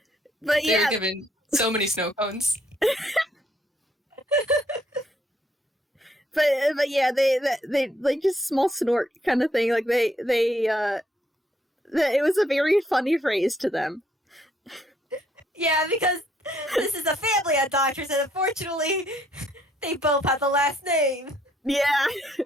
But They yeah, were given so many snow cones. but yeah, they like just small snort kind of thing. Like it was a very funny phrase to them. yeah, because this is a family of doctors, and unfortunately, they both have the last name. Yeah.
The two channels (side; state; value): both; normal; correlation 0.69